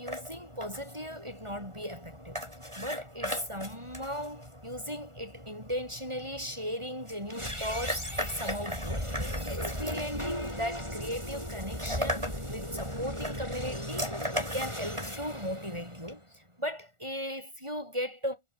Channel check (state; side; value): late; left; 1.4 ms